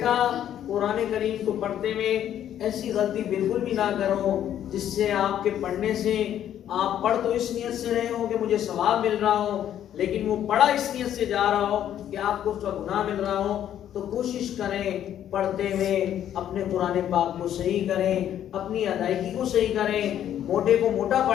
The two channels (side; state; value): right; quieter; 10.7 dB